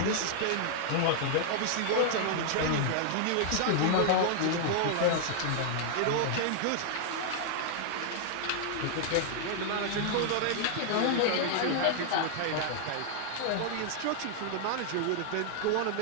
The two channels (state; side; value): different; both; correlation -0.01